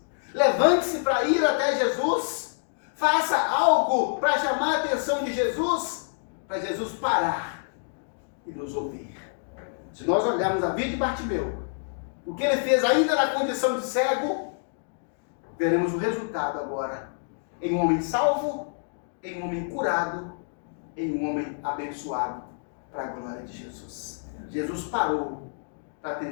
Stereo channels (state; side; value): silent; right; digital silence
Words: Levante-se para ir até Jesus. Faça algo para chamar a atenção de Jesus, para Jesus parar e nos ouvir. Se nós olharmos a vida de Bartimeu, o que ele fez ainda na condição de cego, veremos o resultado agora em um homem salvo, em um homem curado, em um homem abençoado para a glória de Jesus. Jesus parou para